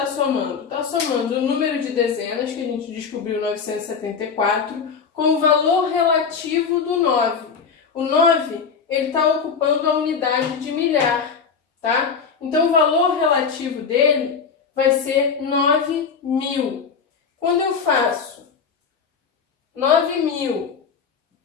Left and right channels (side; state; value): right; quieter; 6.0 dB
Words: somando? Está somando o número de dezenas, que a gente descobriu 974, com o valor relativo do 9. O 9, ele está ocupando a unidade de milhar, tá? Então, o valor relativo dele vai ser 9.000. Quando eu faço 9.000,